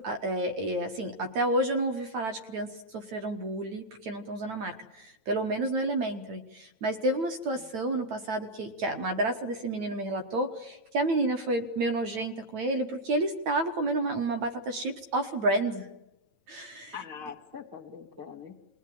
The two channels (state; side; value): late; left; 9.1 ms